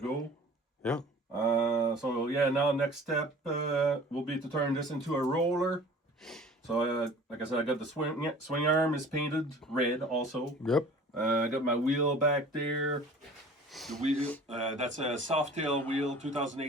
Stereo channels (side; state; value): both; normal; correlation 0.46